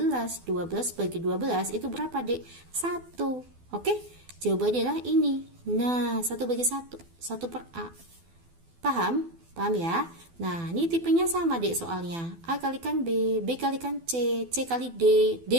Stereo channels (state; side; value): late; left; 12 ms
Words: 12 bagi 12 itu berapa dek? 1. Oke, jawabannya adalah ini. Nah, 1 bagi 1, 1/A. Paham? Paham ya? Nah, ini tipenya sama dek soalnya. A kalikan B, B kalikan C, C kali D,